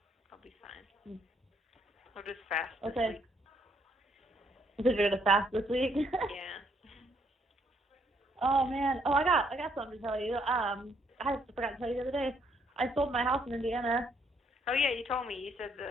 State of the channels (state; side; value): normal; both; correlation 0.70